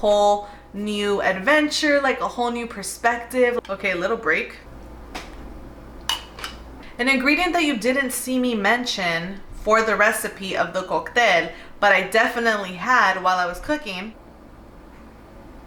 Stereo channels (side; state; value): both; identical; correlation 1.00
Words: new adventure, like a whole new perspective. Okay, little break. An ingredient that you didn't see me mention for the recipe of the cocktail, but I definitely had while I was cooking.